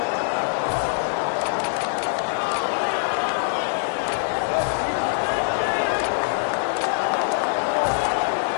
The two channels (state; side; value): silent; right; 58 dB below the other